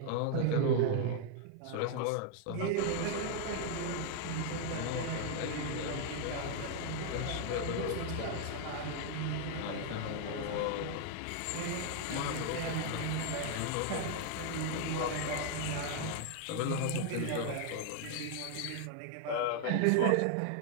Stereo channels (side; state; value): both; different; correlation 0.00